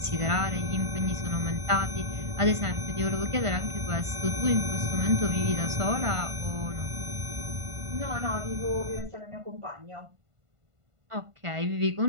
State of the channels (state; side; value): late; left; 1.5 ms